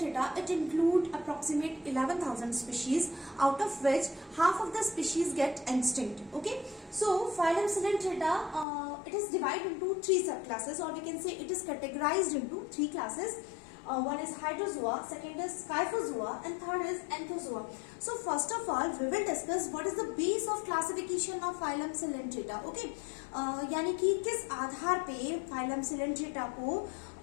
it include approximate 11,000 species, out of which half of the species get extinct. Okay, so phylum Coelentera, it is divided into three subclasses, or we can say it is categorized into three classes. One is Hydrozoa, second is Scyphozoa, and third is Anthozoa. So first of all, we will discuss what is the base of classification of phylum Coelentera. Okay, यानी कि किस आधार पे phylum Coelentera को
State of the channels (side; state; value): right; drops out; at 8.7 s